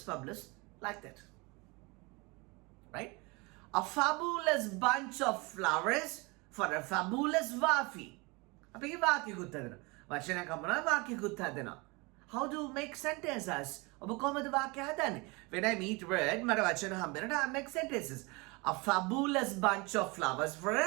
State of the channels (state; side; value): quieter; left; 26.9 dB